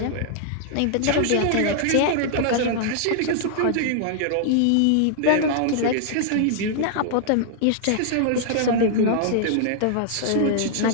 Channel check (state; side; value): different; both; correlation -0.01